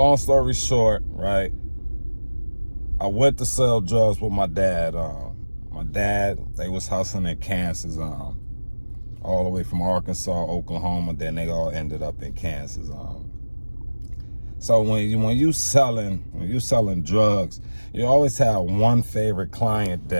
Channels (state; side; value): inverted; both; correlation -1.00